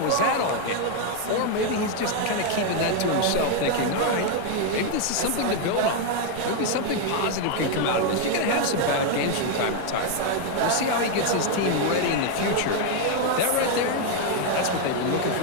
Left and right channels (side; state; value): both; different; correlation 0.01